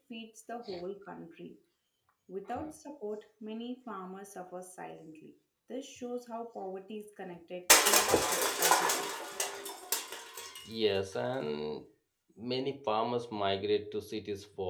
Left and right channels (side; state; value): both; identical; correlation 1.00